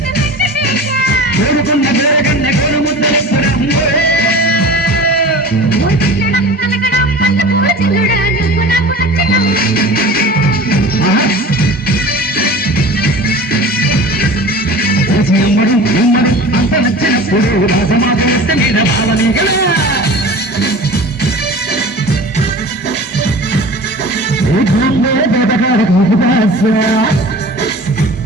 కోరుకున్న పేరగన్న కోరు ముద్దలెప్పడం అంత నచ్చినప్పుడు రాజమాత మీద భావని గల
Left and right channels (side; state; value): both; normal; correlation 0.38